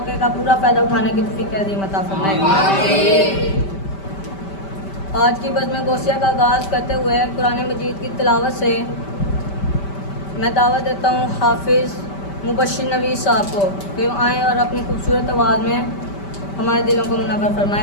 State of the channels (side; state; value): right; late; 5.1 ms